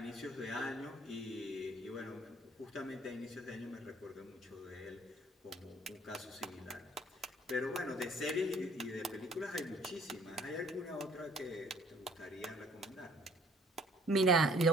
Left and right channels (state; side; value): normal; both; correlation 0.57